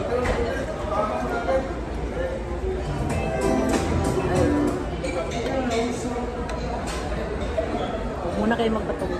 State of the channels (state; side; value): identical; both; correlation 1.00